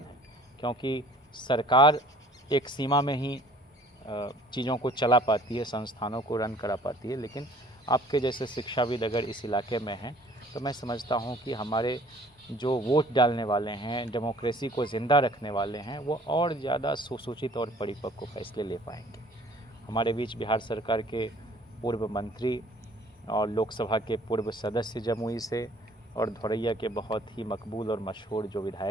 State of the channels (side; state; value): both; normal; correlation 0.54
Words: क्योंकि सरकार एक सीमा में ही चीज़ों को चला पाती है, संस्थानों को रन करा पाती है, लेकिन आपके जैसे शिक्षाविद अगर इस इलाके में हैं तो मैं समझता हूँ कि हमारे जो वोट डालने वाले हैं, डेमोक्रेसी को ज़िंदा रखने वाले हैं, वो और ज़्यादा सुसूचित और परिपक्व फैसले ले पाएंगे। हमारे बीच बिहार सरकार के पूर्व मंत्री और लोकसभा के पूर्व सदस्य जमुई से और धौरैया के बहुत ही मकबूल और मशहूर जो